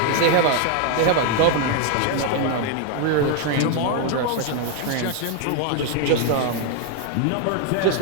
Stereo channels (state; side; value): different; both; correlation 0.01